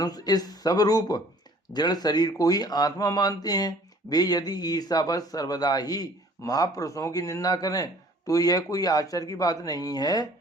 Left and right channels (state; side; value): normal; both; correlation 0.53